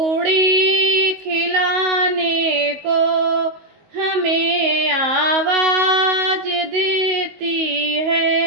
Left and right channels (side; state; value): left; late; 19 ms